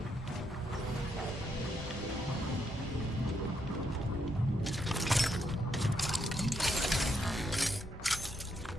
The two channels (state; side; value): normal; both; correlation 0.78